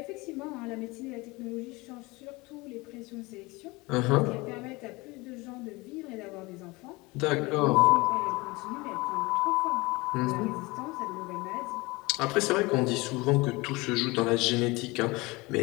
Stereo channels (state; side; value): quieter; right; 23.5 dB